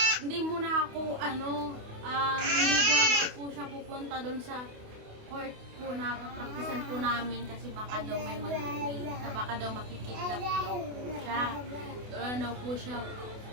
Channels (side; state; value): left; late; 28 ms